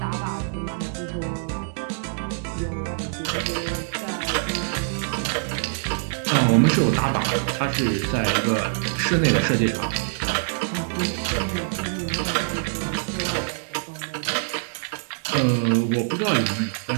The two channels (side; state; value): left; silent; digital silence